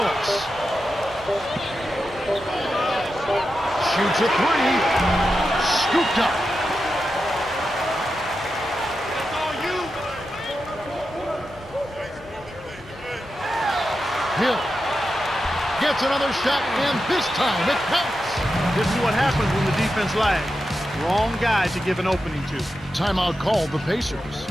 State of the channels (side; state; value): both; normal; correlation 0.89